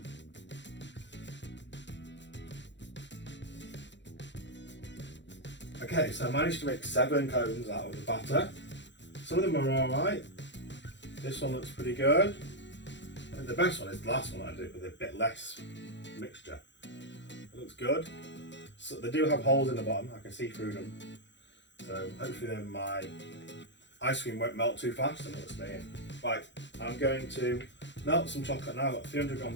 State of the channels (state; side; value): late; right; 0.52 ms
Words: Okay, so I managed to make 7 cones out of the batter. Some of them are alright. This one looks pretty good. And the best one is the last one I did with a bit less mixture. It looks good. So they do have holes in the bottom, I can see through them. So hopefully then my ice cream won't melt too fast and it'll stay in. Right, I'm going to melt some chocolate now. I've got 300